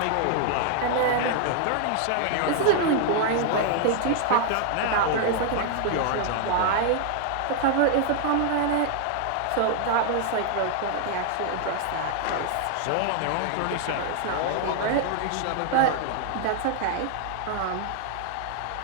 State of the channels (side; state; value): both; different; correlation 0.00